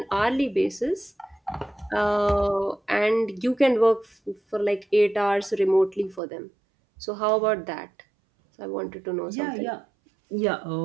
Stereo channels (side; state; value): left; drops out; at 6.2 s